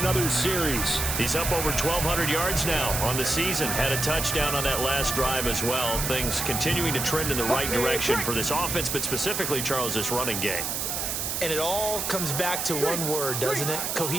series. He's up over 1,200 yards now on the season. Had a touchdown on that last drive as well. Things continuing to trend in the right direction for this offense, but specifically, Charles, this running game. And it all comes back to one word, doesn't it?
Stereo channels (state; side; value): noise; right; hiss, 2 dB below the sound